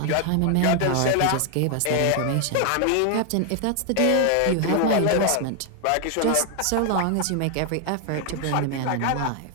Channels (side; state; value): both; different; correlation 0.00